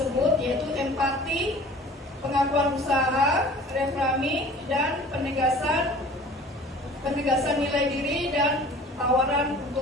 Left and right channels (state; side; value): normal; both; correlation 0.46